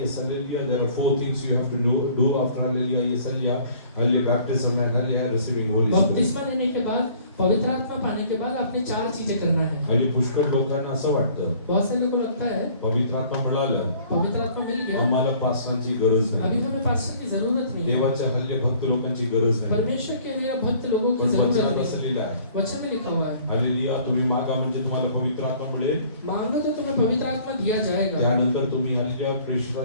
yes, hallelujah. There are 4 things you have to do after hallelujah, yes, hallelujah, hallelujah, baptism and hallelujah, receiving Holy Spirit. बपतिस्मा लेने के बाद पवित्र आत्मा पाने के बाद आपने 4 चीजें करना है। हल्ली पुष्कळ लोकांना असं वाटतं बहुत सारे लोगों को लगता है पवित्र आत्मा मिळालं पवित्र आत्मा मिल गया, आम्हाला पास्टरांची गरज अभी नाही. हमें पास्टर की जरूरत नहीं है, देवाच्या हल्ले भक्त लोकांची गरज नाही. परमेश्वर के लिए भक्त लोगों की पण जरूरत वचनात नहीं असं है। लिहिलं आहे, वचन में लिखा हुआ है, हल्लेलुया, तुम्ही मागा म्हणजे तुम्हाला पवित्र आत्मा मिळेल. मांगो तो तुम्हें पवित्र आत्मा दिया जाएगा, त्यानंतर तुम्ही हल्लेलुया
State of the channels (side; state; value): both; inverted; correlation -0.54